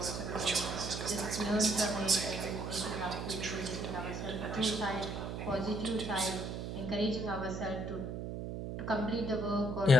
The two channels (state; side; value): noise; right; hum, 5 dB below the sound